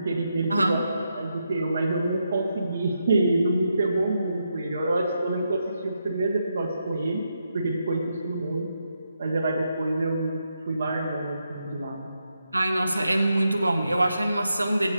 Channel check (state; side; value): inverted; both; correlation -0.83